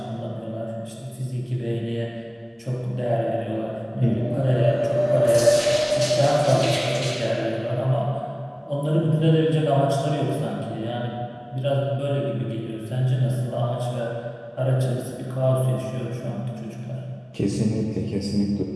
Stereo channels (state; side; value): identical; both; correlation 1.00